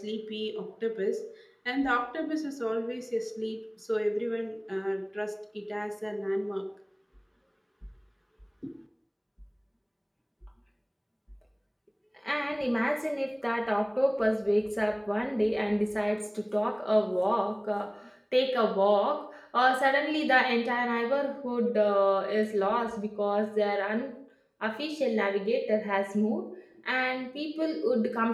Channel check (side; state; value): both; identical; correlation 1.00